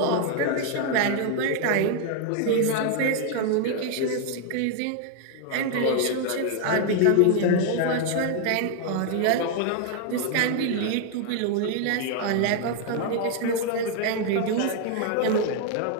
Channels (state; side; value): different; both; correlation 0.00